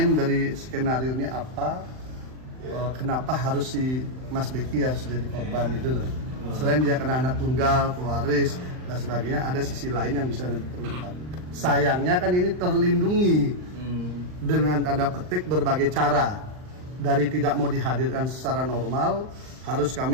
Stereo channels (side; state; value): left; late; 39 ms